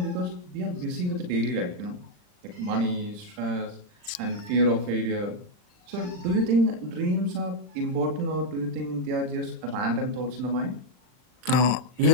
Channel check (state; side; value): late; left; 39 ms